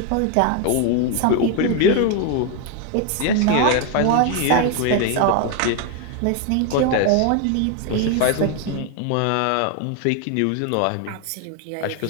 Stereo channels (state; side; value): different; both; correlation 0.01